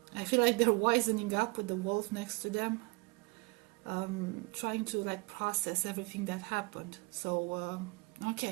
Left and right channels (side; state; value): left; quieter; 26.7 dB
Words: I feel like they're wisening up with the wolf next to them, trying to like process everything that happened. So